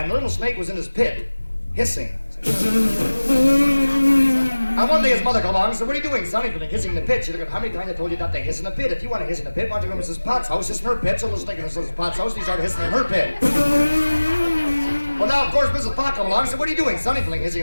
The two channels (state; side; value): inverted; both; correlation -1.00